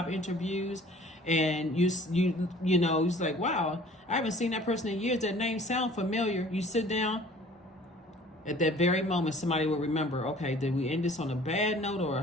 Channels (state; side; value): normal; both; correlation 0.50